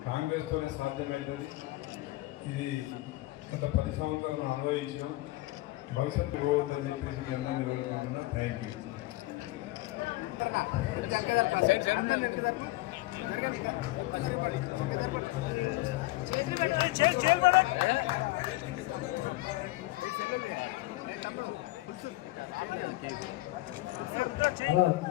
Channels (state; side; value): quieter; right; 19.4 dB